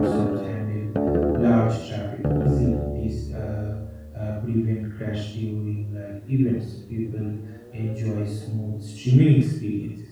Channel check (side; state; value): both; identical; correlation 1.00